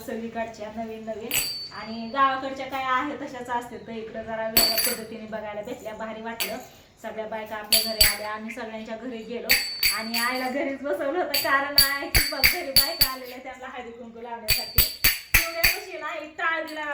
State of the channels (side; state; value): both; identical; correlation 1.00